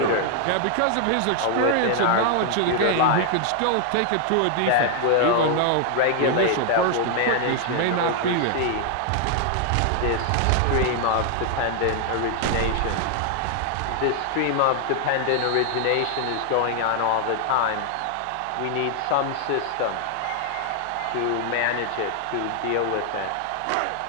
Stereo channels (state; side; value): different; both; correlation 0.00